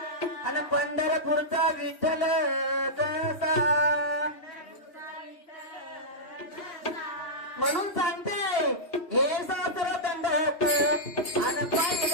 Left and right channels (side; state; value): right; late; 3.0 ms